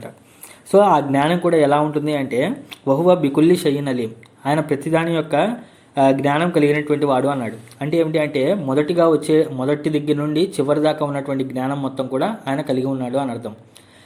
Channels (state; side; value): identical; both; correlation 1.00